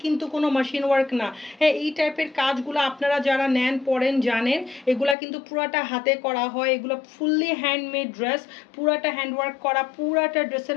কিন্তু কোনো মেশিন ওয়ার্ক না। হ্যাঁ, এই টাইপের কাজগুলো আপনারা যারা নেন পরেন জানেন, এগুলা কিন্তু পুরাটা হাতে করা হয়। এগুলো ফুললি হ্যান্ডমেড ড্রেস, পুরাটা হ্যান্ড ওয়ার্ক করা, পুরাটা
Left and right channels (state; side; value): drops out; right; at 5.2 s